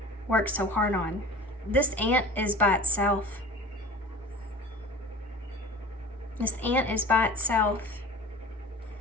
worked so hard on. This ant is by itself. This ant is by itself.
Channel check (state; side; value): normal; both; correlation 0.39